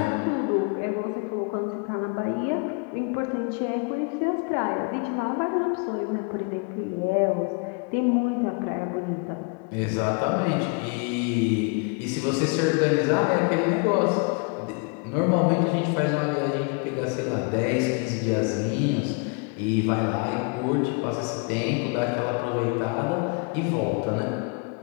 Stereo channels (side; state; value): right; quieter; 34.0 dB